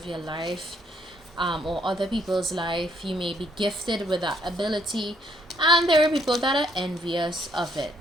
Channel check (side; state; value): both; normal; correlation 0.69